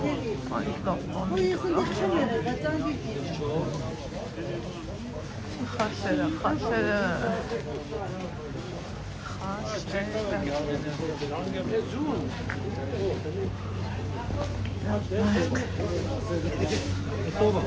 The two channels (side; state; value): both; identical; correlation 1.00